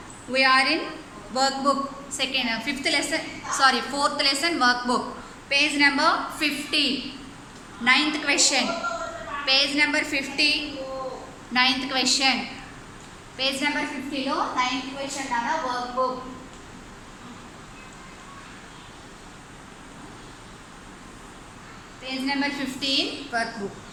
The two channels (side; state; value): both; identical; correlation 1.00